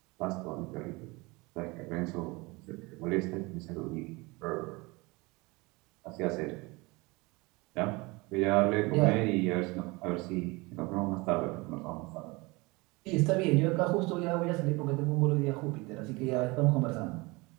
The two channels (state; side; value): quieter; left; 24.7 dB